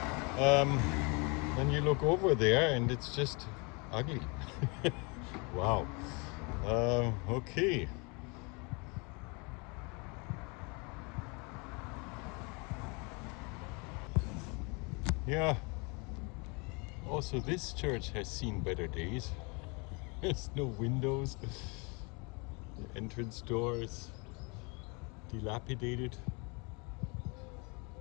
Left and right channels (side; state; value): right; quieter; 30.6 dB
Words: Then you look over there and it's just ugly. Wow. Okay. Yeah. Also, this church has seen better days. There's no windows. The entrance door is dilapidated.